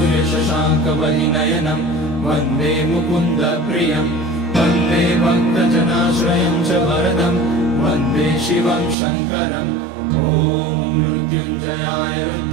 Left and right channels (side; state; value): left; drops out; at 9.0 s